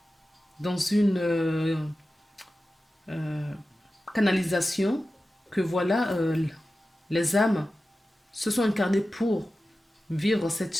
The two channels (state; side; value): normal; both; correlation 0.94